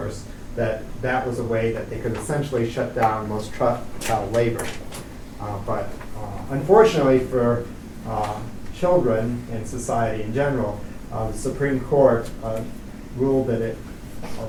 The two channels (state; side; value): identical; both; correlation 1.00